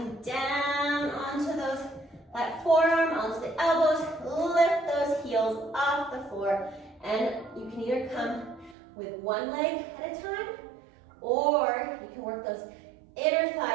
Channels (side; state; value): left; drops out; at 8.8 s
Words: down onto that forearm, onto the elbows, lift those heels off the floor, and you can either come with one leg at a time, or you can work those inner